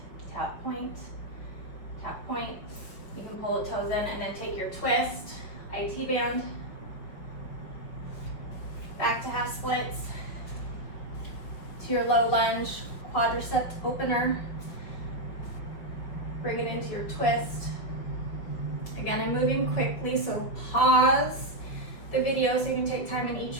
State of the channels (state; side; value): late; right; 5.2 ms